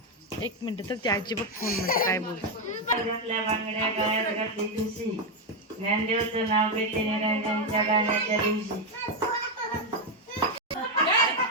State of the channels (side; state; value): both; normal; correlation 0.05